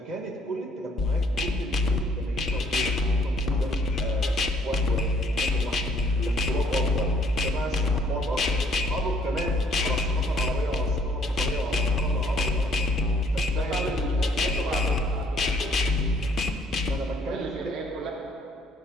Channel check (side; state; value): both; normal; correlation 0.63